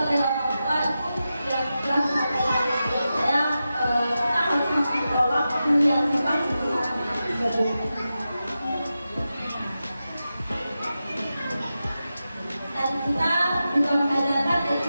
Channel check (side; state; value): both; inverted; correlation -0.91